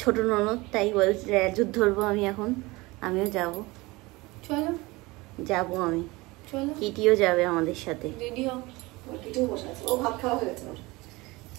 ছোট ননদ, তাই বলছি যুদ্ধ ধরবো আমি এখন। আমিও যাব, চলো যাবো আমি। চলো, কিটিও যাবে আমাদের সাথে। রেডি হও। কিটিও বসে আছে, ও ভাত খাওয়া হয়ে গেছে।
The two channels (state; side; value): quieter; left; 22.4 dB